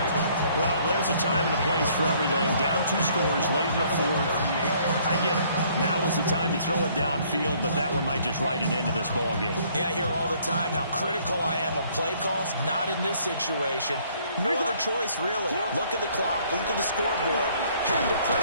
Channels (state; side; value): inverted; both; correlation -0.62